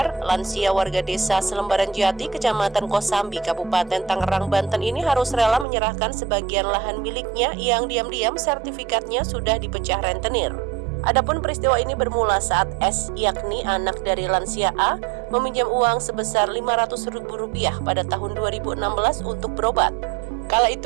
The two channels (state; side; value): drops out; left; at 5.7 s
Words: lansia warga desa Selembaran Jati, Kecamatan Kosambi, Kabupaten Tangerang, Banten ini harus rela menyerahkan sebagian lahan miliknya yang diam-diam sertifikatnya sudah dipecah rentenir. Adapun peristiwa ini bermula saat S, yakni anak dari lansia A, meminjam uang sebesar Rp500.000 pada tahun 2016 untuk berobat. Kala